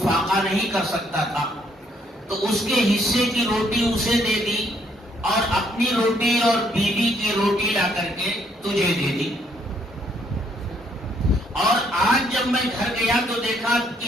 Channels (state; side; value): normal; both; correlation 0.69